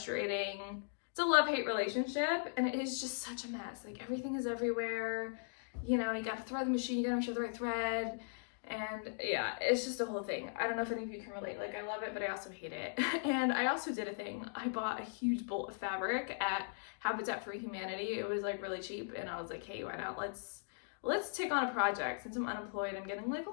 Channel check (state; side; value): silent; right; digital silence